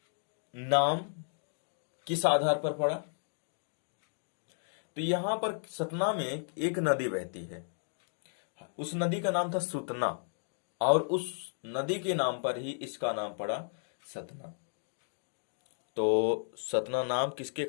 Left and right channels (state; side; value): silent; right; digital silence